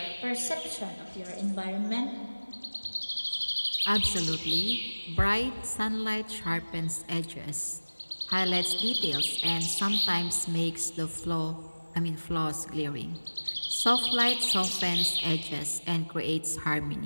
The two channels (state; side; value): inverted; both; correlation -1.00